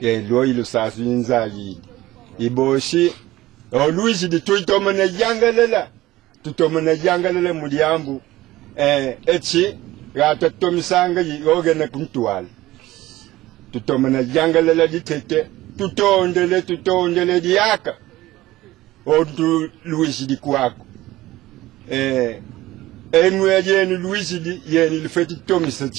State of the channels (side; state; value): left; quieter; 17.0 dB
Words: lo ilo sasu nzayidi iboshi oluishi tuitomana yangalela muliambu echi gata tomisanga yogena kuntwala tutomana yangalela ditete tutondele diaka odu luishi dikwako enwe yenu luishi di yenu lufeti